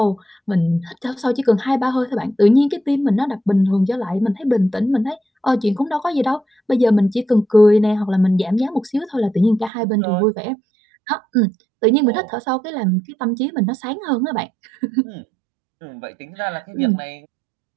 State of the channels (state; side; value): drops out; left; at 9.7 s